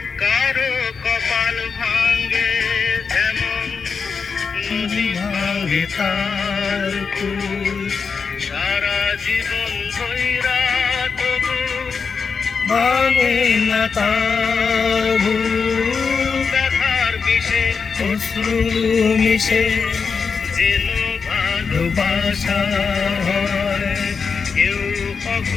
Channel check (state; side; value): quieter; right; 5.4 dB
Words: কারো কপাল ভাঙ্গে যেমন নদী ভাঙ্গে তার কুল, সারা জীবন ধইরা তবু ভাঙে না তার ভুল। ব্যথার বিষে অশ্রু মিশে যেন ভালোবাসা হয়, কেউ